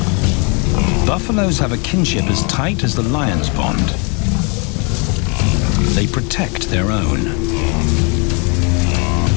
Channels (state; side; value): quieter; right; 33.9 dB